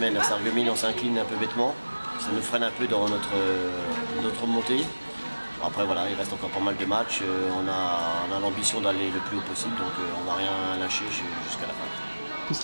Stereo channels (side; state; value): both; inverted; correlation -1.00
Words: à Sarreguemines, on s'incline un peu bêtement. Ça nous freine un peu dans notre montée. Après voilà, il reste encore pas mal de matchs. On a l'ambition d'aller le plus haut possible, donc on ne va rien lâcher jusqu'à la fin. Qu'est-ce